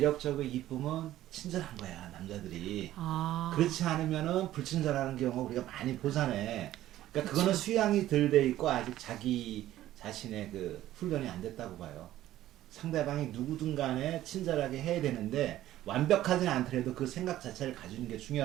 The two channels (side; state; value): left; quieter; 13.9 dB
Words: 이쁘면 친절한 거야, 남자들이. 그렇지 않으면은 불친절하는 경우 우리가 많이 보잖아. 그러니까 그거는 수양이 덜 돼 있고 아직 자기 자신의 그 훈련이 안 됐다고 봐요. 상대방이 누구든 간에 친절하게 해야 되는데 완벽하지는 않더라도 그 생각 자체를 가지는 게